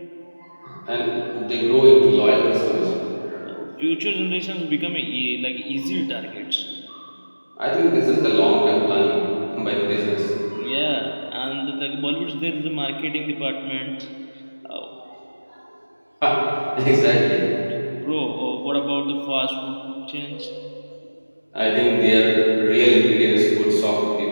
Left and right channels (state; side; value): inverted; both; correlation -1.00